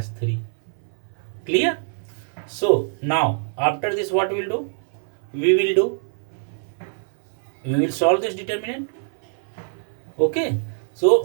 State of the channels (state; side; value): silent; left; 57 dB below the other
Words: 3. Clear? So now after this what we will do? We will solve this determinant. Okay,